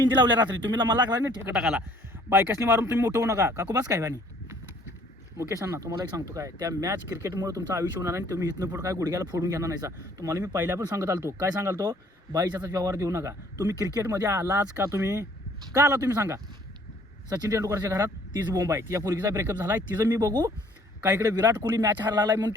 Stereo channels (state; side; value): normal; both; correlation 0.59